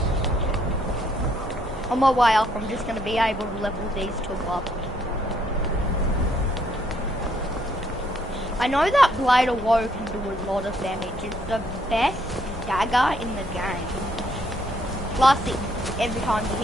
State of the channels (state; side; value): normal; both; correlation 0.69